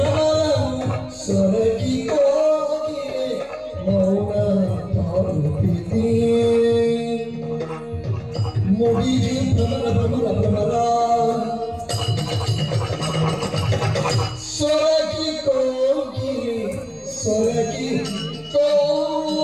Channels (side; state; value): both; identical; correlation 1.00